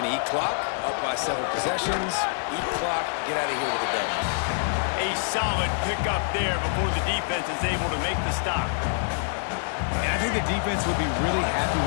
to eat clock, up by several possessions, eat clock, get out of here with a W. A solid pickup there before the defense is able to make the stop. And I think the defense would be really happy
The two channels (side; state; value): right; silent; 61 dB below the other